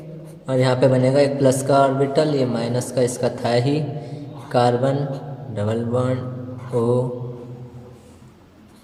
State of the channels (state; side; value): identical; both; correlation 1.00